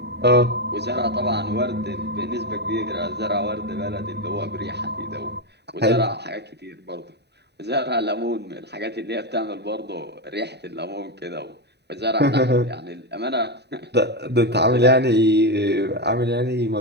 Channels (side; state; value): left; late; 0.49 ms